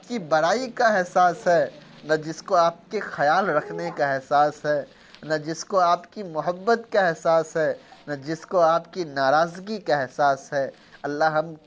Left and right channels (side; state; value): both; identical; correlation 1.00